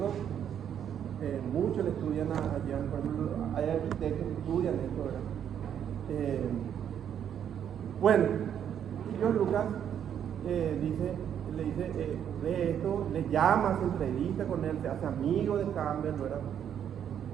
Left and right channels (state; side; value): quieter; left; 9.2 dB